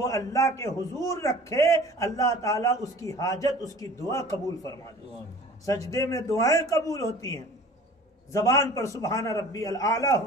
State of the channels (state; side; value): normal; both; correlation 0.44